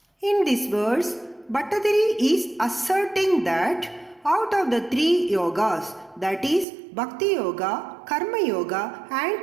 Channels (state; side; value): drops out; left; at 6.7 s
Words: In this verse, Bhattadiri is asserting that out of the 3 yogas, that is Bhakti Yoga, Karma Yoga